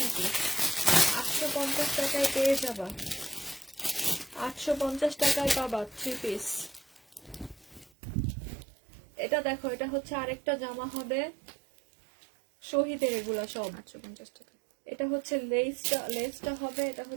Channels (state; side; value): drops out; left; at 7.9 s